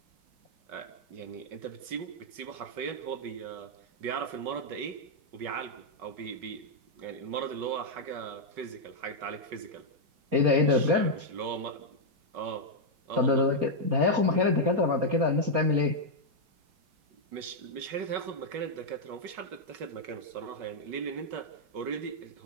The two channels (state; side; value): late; left; 5.4 ms